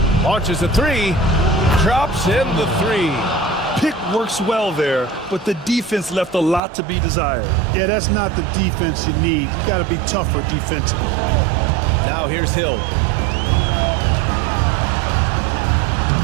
Launches a 3, drops in the 3. Pick works well there, but the defense left a lot to be desired. Yeah, that's not the defense you need. You got to be tougher defensively. Now here's Hill.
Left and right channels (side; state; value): left; drops out; at 6.6 s